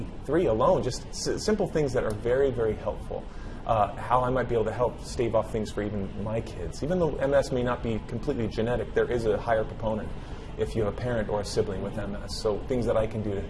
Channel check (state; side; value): identical; both; correlation 1.00